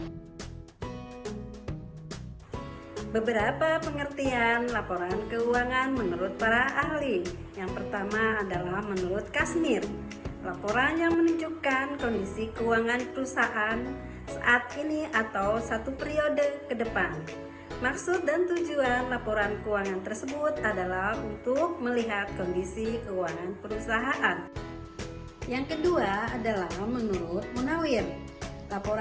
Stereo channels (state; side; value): identical; both; correlation 1.00